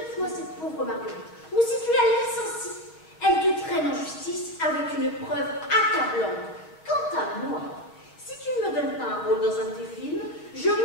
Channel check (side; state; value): right; late; 6.2 ms